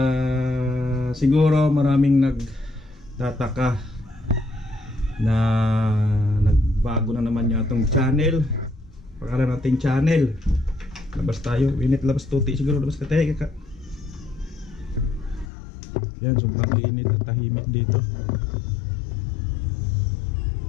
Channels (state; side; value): drops out; right; at 15.5 s